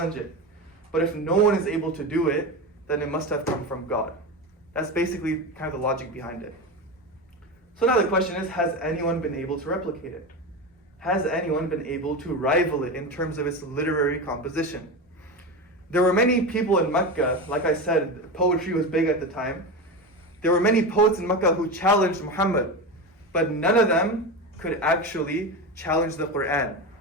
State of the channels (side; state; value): both; normal; correlation 0.21